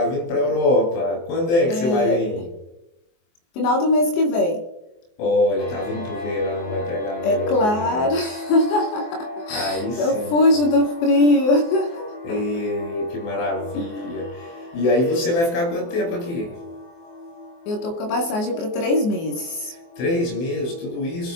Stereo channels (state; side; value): late; right; 24 ms